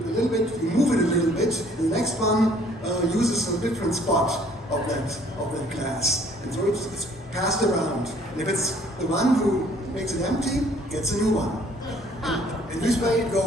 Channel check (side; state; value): both; normal; correlation 0.59